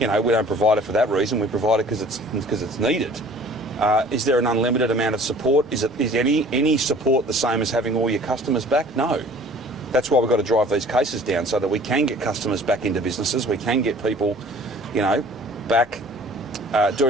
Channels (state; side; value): normal; both; correlation 0.50